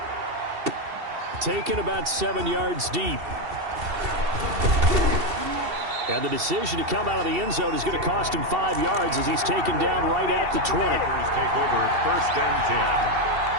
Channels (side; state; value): left; late; 2.7 ms